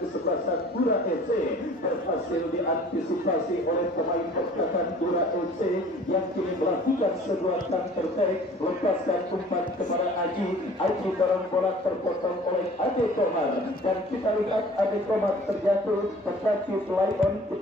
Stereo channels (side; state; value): both; normal; correlation 0.49